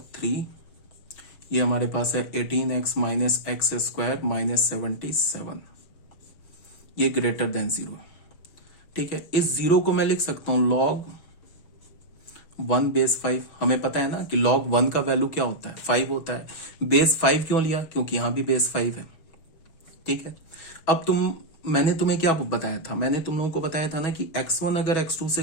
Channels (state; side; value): late; right; 6.1 ms